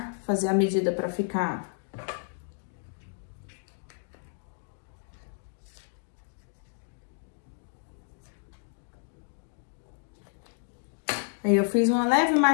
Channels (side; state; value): right; silent; digital silence